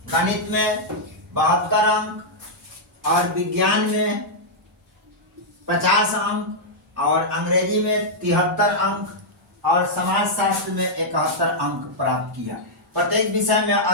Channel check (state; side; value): normal; both; correlation -0.06